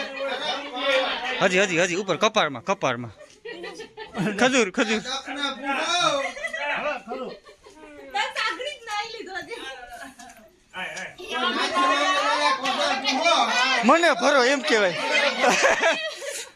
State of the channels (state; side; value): identical; both; correlation 1.00